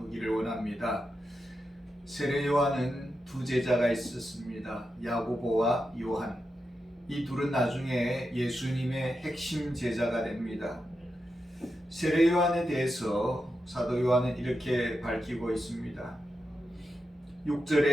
원합니다. 세례 요한은 두 제자가 있었습니다. 야고보와 요한. 이 둘은 나중에 예수님의 핵심 제자가 됩니다. 세례 요한에 대해서 사도 요한은 이렇게 밝히고 있습니다.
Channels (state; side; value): normal; both; correlation 0.88